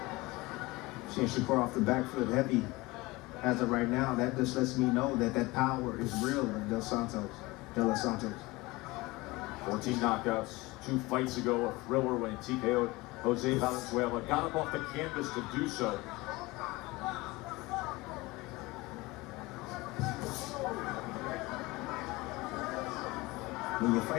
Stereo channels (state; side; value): quieter; right; 21.9 dB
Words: Seeing Shakur off the back foot heavy as of right now, that just lets me know that that power is real in Del Santos. 14 knockouts, 2 fights ago, a thriller when he TKO'd Jose Valenzuela. Got him off the canvas to do so. When you're